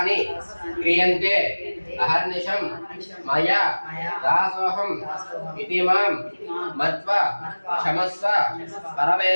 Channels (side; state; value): both; inverted; correlation -1.00